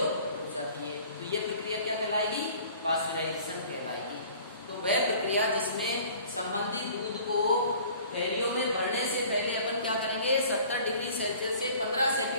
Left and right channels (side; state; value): both; inverted; correlation -0.49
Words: रुक जाती है। तो ये प्रक्रिया क्या कहलाएगी? पाश्चराइजेशन कहलाएगी। तो वह प्रक्रिया जिसमें संबंधित दूध को थैलियों में भरने से पहले अपन क्या करेंगे? 70 डिग्री सेल्सियस से 15